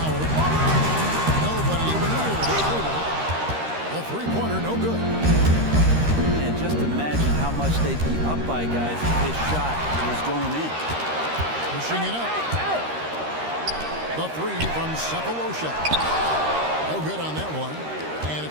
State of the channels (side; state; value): left; late; 13 ms